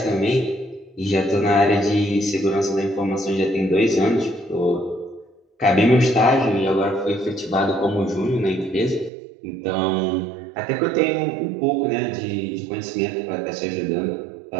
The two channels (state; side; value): drops out; left; at 9.1 s